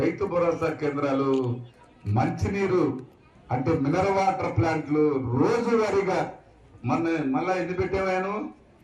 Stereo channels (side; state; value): both; identical; correlation 1.00